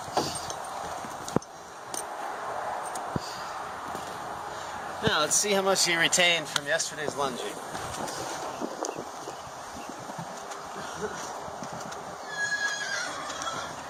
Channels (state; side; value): identical; both; correlation 1.00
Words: Now let's see how much he retained from yesterday's lunging.